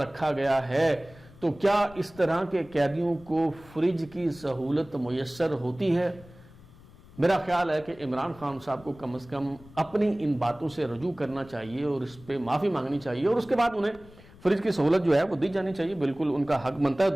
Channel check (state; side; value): noise; left; rumble, 22 dB below the sound